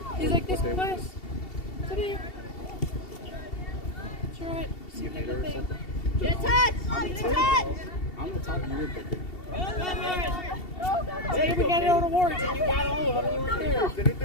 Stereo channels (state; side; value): late; right; 2.7 ms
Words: He's like, this class today. Sure, what? See the thing. Get a touch! Get a touch! I'm the top of your picker. Today we got out awards and you got all of them and you weren't there. Send it